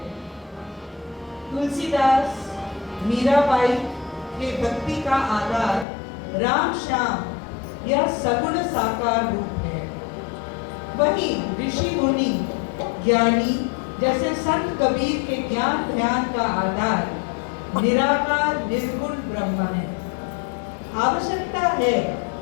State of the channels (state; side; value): drops out; right; at 5.9 s